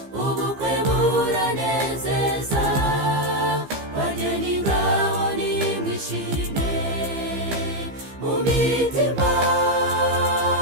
ubukwe buranezeza, bageni ngaho nimwishime mu mitima,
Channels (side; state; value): left; late; 15 ms